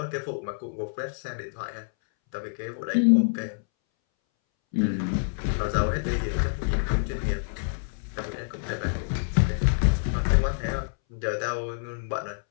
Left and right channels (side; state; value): right; silent; 60 dB below the other